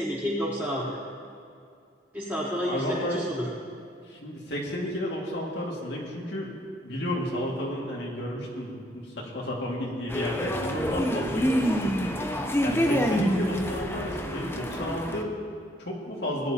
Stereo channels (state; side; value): normal; both; correlation 0.65